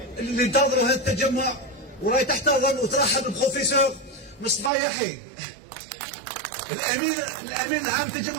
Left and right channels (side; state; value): left; drops out; at 4.7 s